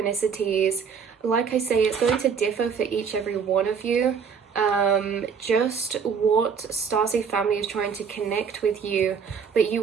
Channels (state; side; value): quieter; left; 6.4 dB